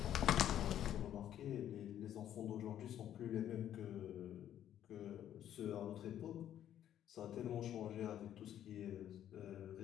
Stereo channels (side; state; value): right; quieter; 10.9 dB